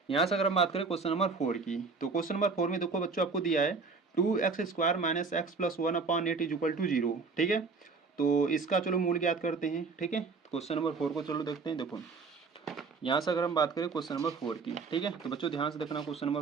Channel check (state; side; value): quieter; left; 4.5 dB